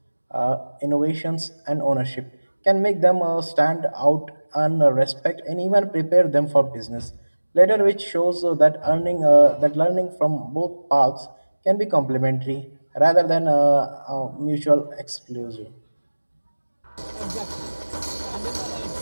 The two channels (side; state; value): both; inverted; correlation -1.00